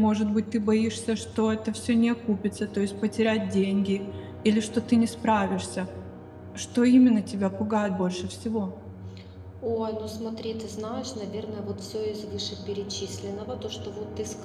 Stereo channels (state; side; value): identical; both; correlation 1.00